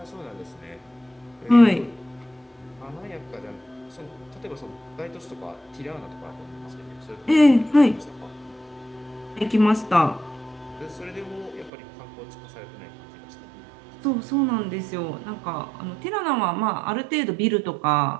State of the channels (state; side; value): drops out; left; at 11.7 s